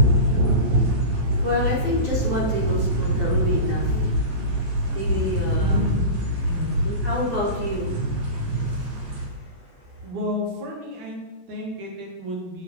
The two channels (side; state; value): left; late; 11 ms